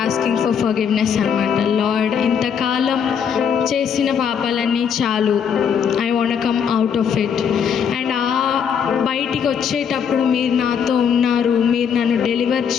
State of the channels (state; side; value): quieter; right; 7.4 dB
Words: asking for forgiveness అనమాట. లార్డ్, ఇంతకాలం చేసిన పాపాలన్నీ చాలు, I want come out of it. And బయటికి వచ్చేటప్పుడు మీరు నాతో ఉన్నారు, మీరు నన్ను డెలివర్